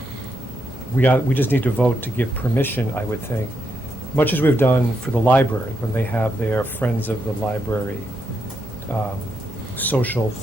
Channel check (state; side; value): normal; both; correlation 0.81